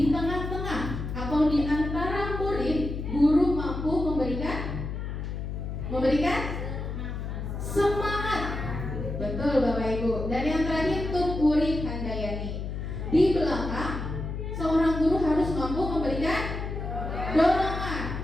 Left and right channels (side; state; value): left; noise; hum, 5 dB below the sound